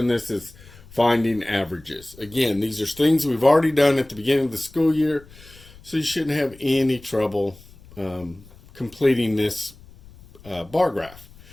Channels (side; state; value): left; noise; rumble, 22 dB below the sound